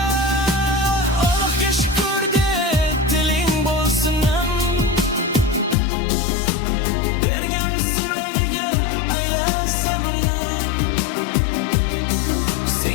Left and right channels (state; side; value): drops out; right; at 5.8 s